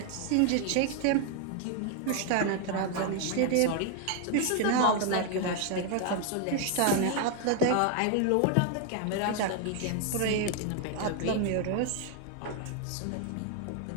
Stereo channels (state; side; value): different; both; correlation 0.00